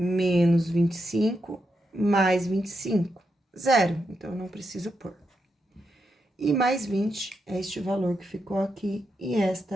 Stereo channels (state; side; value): normal; both; correlation 0.84